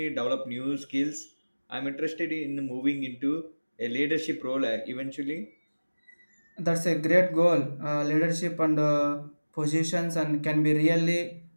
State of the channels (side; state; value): both; inverted; correlation -1.00